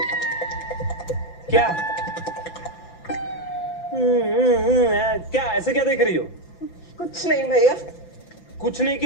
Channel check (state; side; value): late; right; 5.9 ms